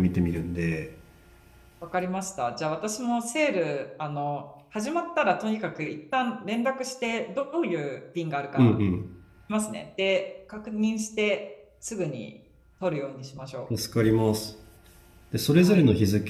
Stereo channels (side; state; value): both; identical; correlation 1.00